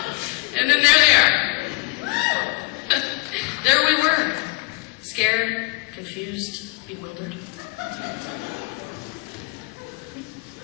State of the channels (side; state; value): right; quieter; 25.6 dB